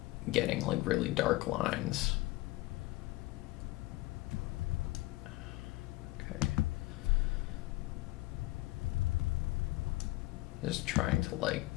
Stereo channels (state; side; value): quieter; right; 19.6 dB